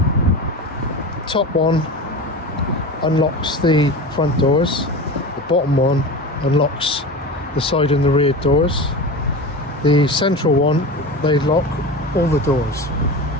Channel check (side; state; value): both; normal; correlation 0.29